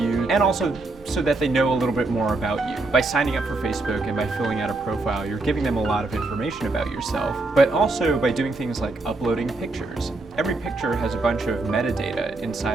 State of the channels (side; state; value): left; quieter; 3.2 dB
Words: and also so that they know a little bit more about you. By signing up for Facebook and by filling out a profile, you're giving them a lot of information about yourself, but also by doing things like uploading pictures. Every picture has a bunch of metadata